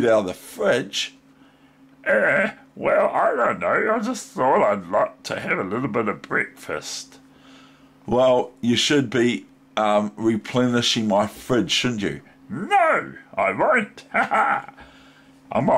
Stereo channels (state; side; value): identical; both; correlation 1.00